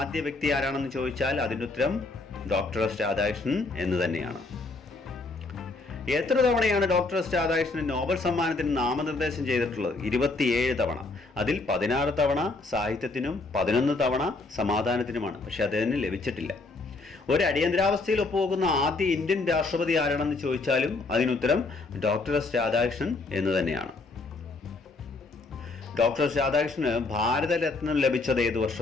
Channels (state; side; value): quieter; right; 3.5 dB